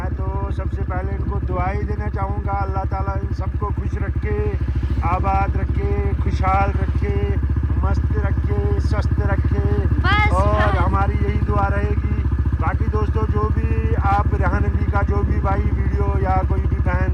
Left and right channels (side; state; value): both; identical; correlation 1.00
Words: तो सबसे पहले इनको दुआई देना चाहूँगा। अल्लाह ताला इन सबको खुश रखे, आबाद रखे, खुशहाल रखे, मस्त रखे, स्वस्थ रखे। और हमारी यही दुआ रहेगी। बाकी दोस्तों, जो भी आप रेहान अली का जो भी भाई वीडियो या कोई भी बहन